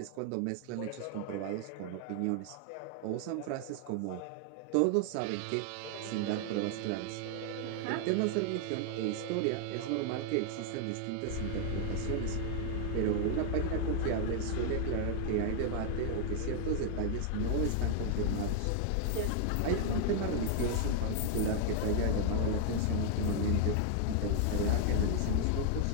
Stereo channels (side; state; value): both; different; correlation 0.00